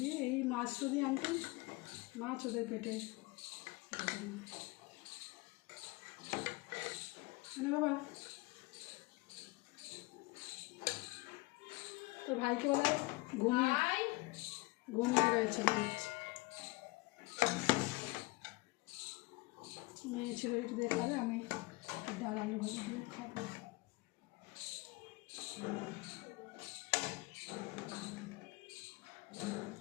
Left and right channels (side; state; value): right; quieter; 23.5 dB